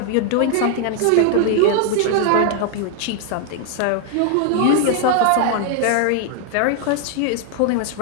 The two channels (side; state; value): both; different; correlation 0.00